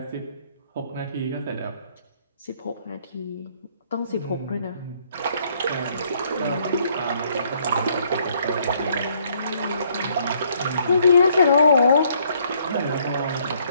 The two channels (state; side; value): inverted; both; correlation -0.67